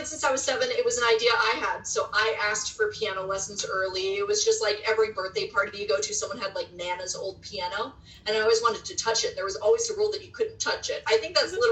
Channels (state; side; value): identical; both; correlation 1.00